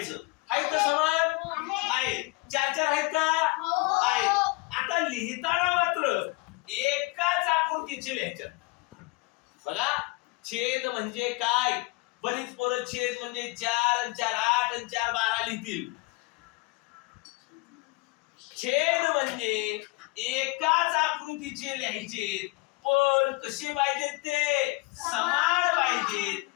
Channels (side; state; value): right; quieter; 24.0 dB